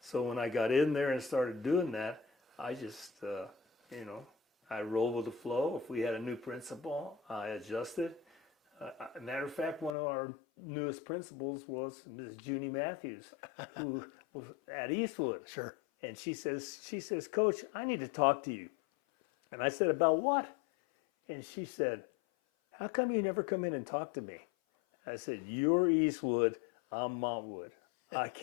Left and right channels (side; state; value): right; drops out; at 10.0 s